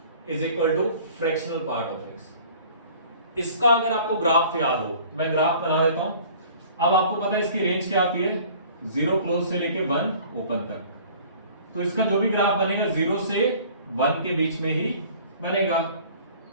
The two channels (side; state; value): both; inverted; correlation -0.49